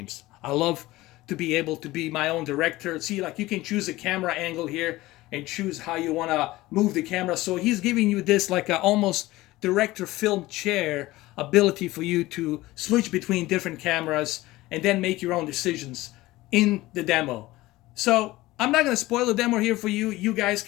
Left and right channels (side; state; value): right; quieter; 18.3 dB